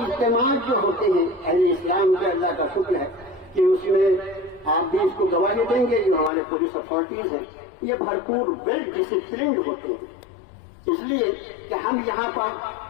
اجتماع جو ہوتے ہیں اہل اسلام کا اللہ کا شکر ہے کہ اس میں آپ بھی اس کو گواہی دیں گے، جو ہمارے پولیس اتھارٹیز ہیں یہ بھرپور ویل ڈسپلنڈ ہوتے ہیں، اس لیے کہ ہم یہاں پر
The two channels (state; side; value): drops out; right; at 6.3 s